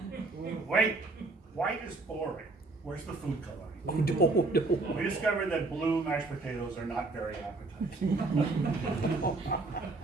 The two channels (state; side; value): quieter; left; 3.4 dB